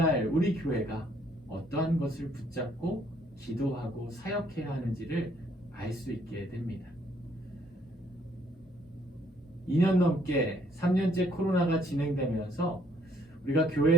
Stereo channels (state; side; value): normal; both; correlation 0.65